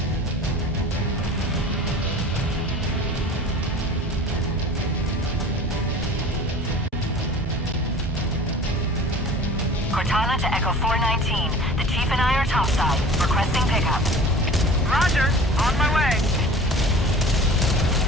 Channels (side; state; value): both; normal; correlation 0.43